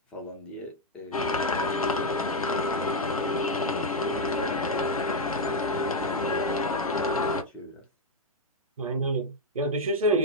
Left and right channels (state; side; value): normal; both; correlation 0.01